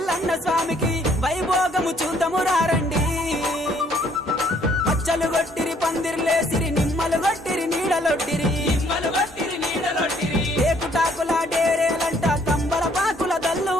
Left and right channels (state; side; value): normal; both; correlation 0.64